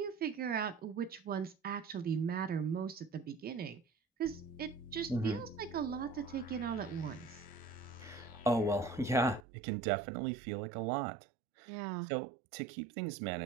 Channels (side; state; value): left; drops out; at 9.4 s